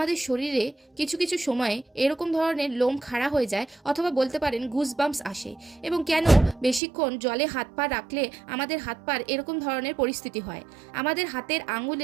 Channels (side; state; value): left; drops out; at 6.8 s